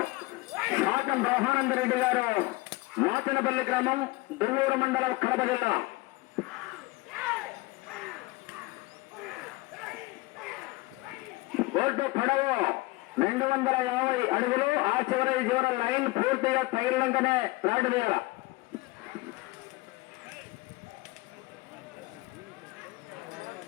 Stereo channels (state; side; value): quieter; right; 22.2 dB